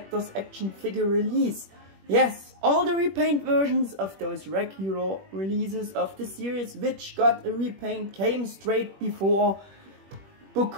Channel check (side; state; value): left; late; 21 ms